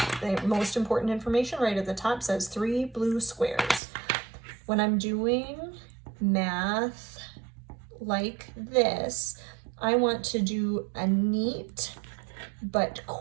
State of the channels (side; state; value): left; drops out; at 3.8 s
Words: the most important information right at the top. Says 3 blue squares. When I'm doing math like this, I want to do a neat but